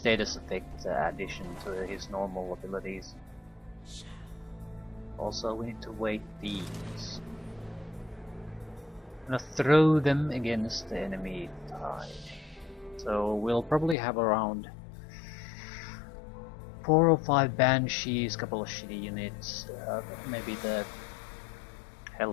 effect addition to his normal abilities. Also we need to weight these. I'm gonna throw them against the enemy tide. So we'll probably have around 4 or 5 Banshees, couple of shitty units, maybe the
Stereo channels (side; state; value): right; drops out; at 14.0 s